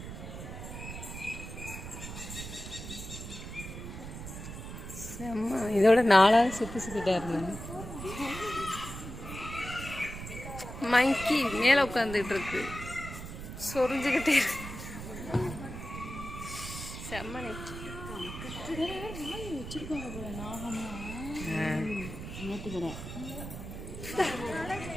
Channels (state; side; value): noise; right; rumble, 9 dB below the sound